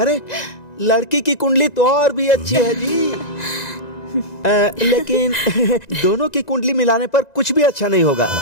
लड़की की कुंडली तो और भी अच्छी है जी। लेकिन दोनों की कुंडली मिलाने पर कुछ भी अच्छा नहीं होगा।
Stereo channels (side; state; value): right; late; 1.9 ms